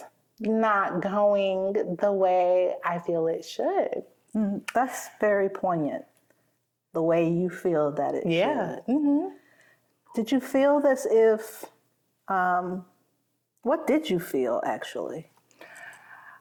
not going the way I feel it should. That's very poignant, the way you feel that it should. Did you feel as if, what did you feel actually?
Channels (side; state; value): both; identical; correlation 1.00